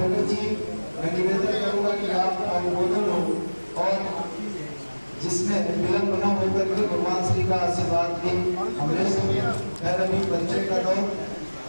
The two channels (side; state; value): both; inverted; correlation -1.00